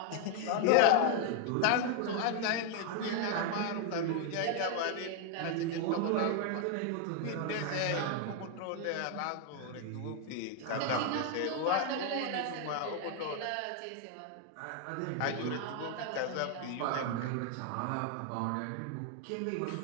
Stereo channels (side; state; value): both; different; correlation 0.00